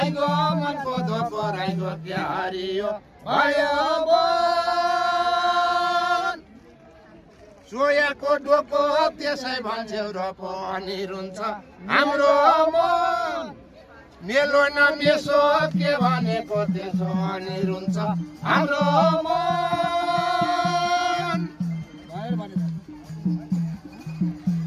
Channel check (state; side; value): identical; both; correlation 1.00